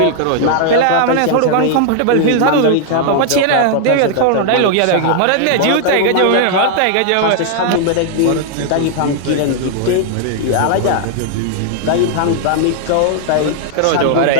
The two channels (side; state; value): both; different; correlation 0.00